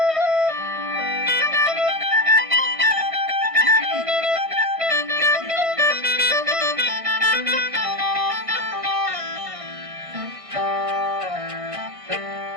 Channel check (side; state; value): left; late; 1.6 ms